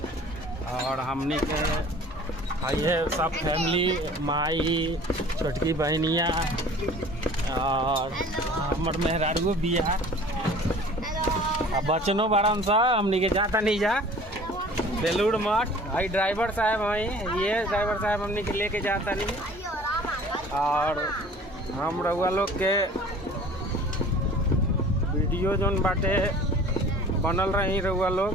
और हमनी के ये सब फैमिली माई छोटकी बहनिया और हमर मेहरारू बिया बचनो बड़न सा हमनी के जाता नहीं जा बेलूर मठ। आई ड्राइवर साहब हैं, ये ड्राइवर साहब हमनी के लेके जाता नहीं। और हम रउआ लोग के वीडियो जोन बाटे बनल रही रउआ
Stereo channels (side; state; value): both; normal; correlation 0.47